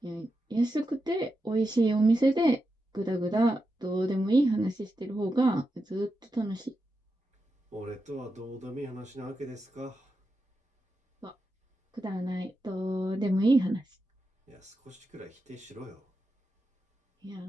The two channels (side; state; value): both; normal; correlation 0.88